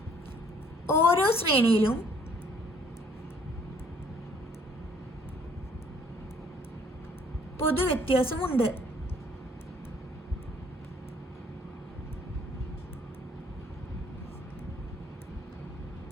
ഓരോ ശ്രേണിയിലും പൊതുവ്യത്യാസമുണ്ട്.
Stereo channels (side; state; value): both; normal; correlation 0.61